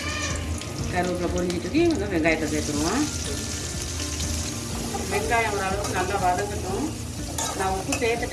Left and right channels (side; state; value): both; identical; correlation 1.00